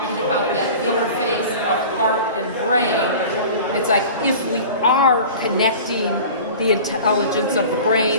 about that interface of heart and brain. It's like if we are connecting the intelligence of the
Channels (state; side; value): inverted; both; correlation -0.39